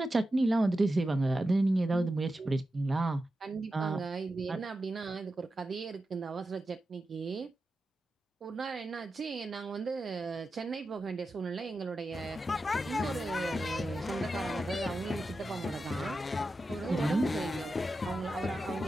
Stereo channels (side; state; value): both; normal; correlation 0.91